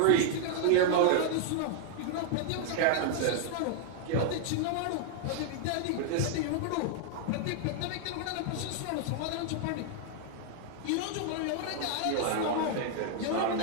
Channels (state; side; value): different; both; correlation 0.00